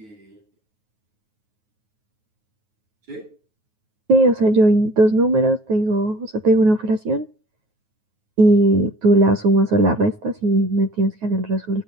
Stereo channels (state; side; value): late; left; 9.4 ms